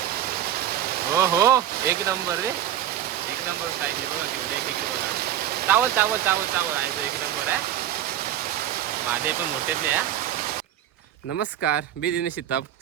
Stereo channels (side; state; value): left; quieter; 11.3 dB